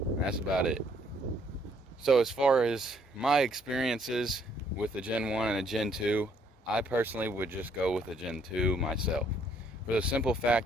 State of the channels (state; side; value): normal; both; correlation 0.67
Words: That's about it. So as far as my experiences with a Gen 1 and a Gen 2, I personally would just go with a Gen 2 myself, for the simple